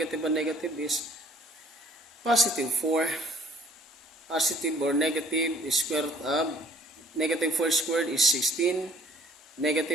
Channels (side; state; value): both; normal; correlation 0.57